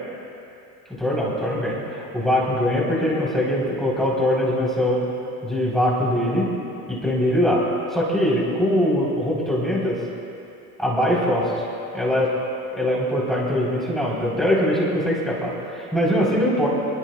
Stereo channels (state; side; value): normal; both; correlation 0.54